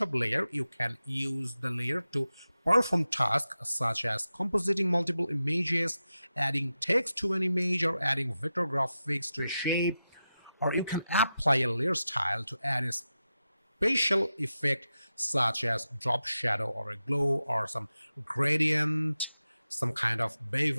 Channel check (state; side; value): inverted; both; correlation -0.91